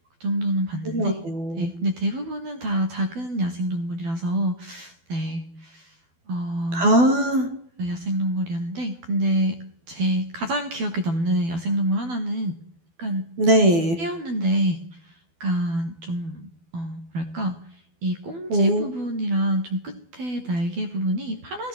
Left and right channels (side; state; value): left; late; 12 ms